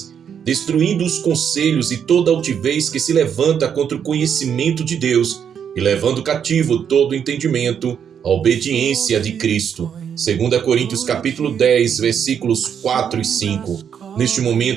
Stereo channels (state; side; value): quieter; left; 8.0 dB